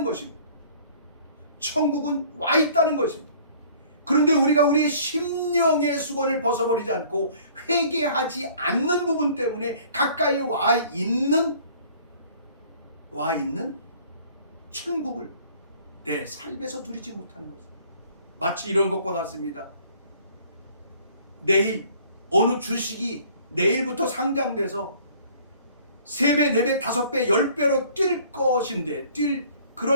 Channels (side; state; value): both; inverted; correlation -0.54